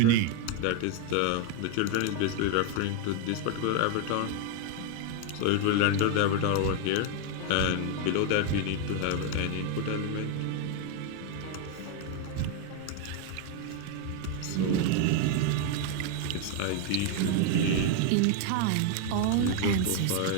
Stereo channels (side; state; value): both; different; correlation 0.01